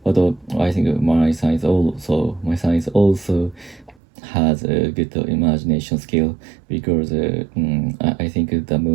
but I think my son is also has a good imagination skill because I think the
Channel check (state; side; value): drops out; left; at 4.0 s